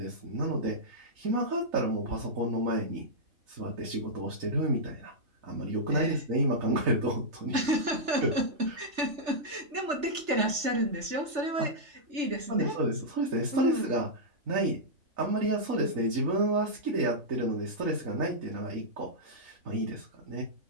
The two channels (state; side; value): late; left; 3.3 ms